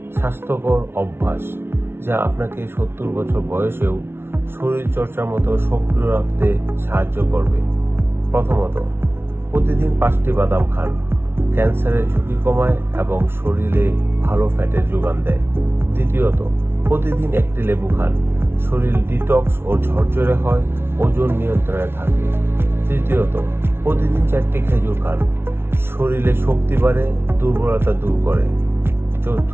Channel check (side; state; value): left; late; 0.12 ms